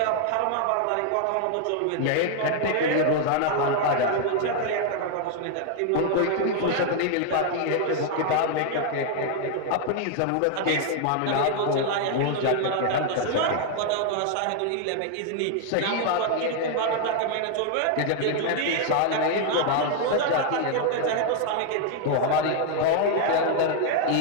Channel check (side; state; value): both; different; correlation 0.00